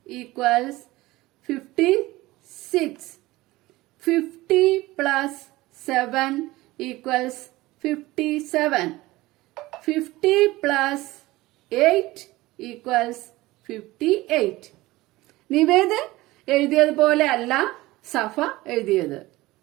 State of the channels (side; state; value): left; quieter; 19.0 dB